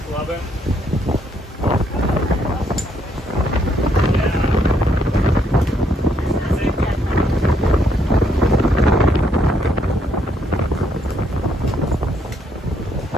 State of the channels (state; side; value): normal; both; correlation 0.72